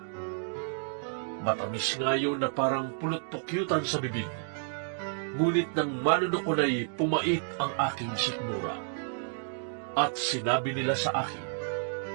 Matamis nga yun na parang pulot-pukyutan sa bibig. Ngunit nang manunok ko na'y pumait ang aking sikmura. At sinabi nila sa akin,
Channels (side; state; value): left; silent; digital silence